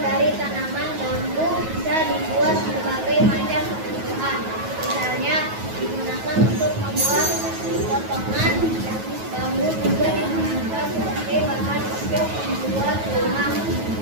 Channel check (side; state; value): left; late; 9.3 ms